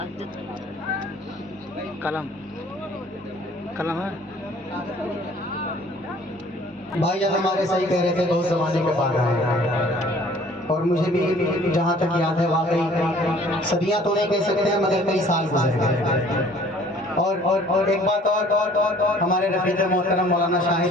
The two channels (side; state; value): both; normal; correlation 0.54